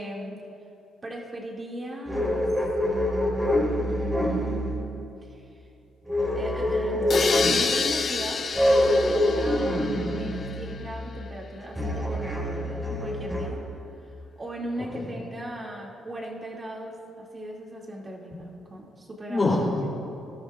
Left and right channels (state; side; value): normal; both; correlation 0.83